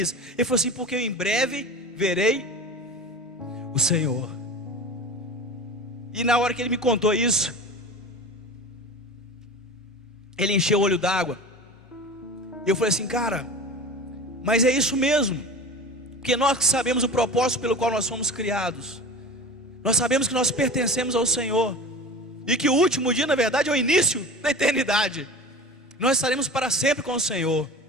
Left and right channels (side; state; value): both; normal; correlation 0.35